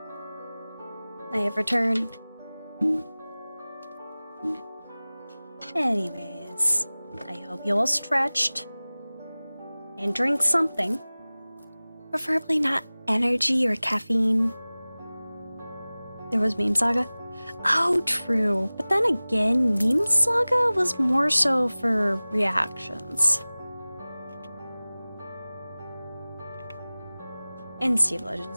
I have returned. Anyways, I hope you all stretched and drink something. Preferably not energy or caffeine. There was Meme Saga. Oh, true. But then again, Meme Saga was more so for reactions. And Steve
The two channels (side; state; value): both; inverted; correlation -0.99